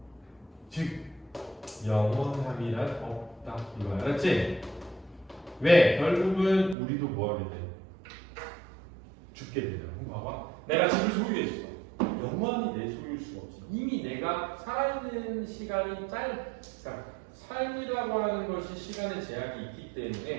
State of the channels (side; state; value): left; drops out; at 6.8 s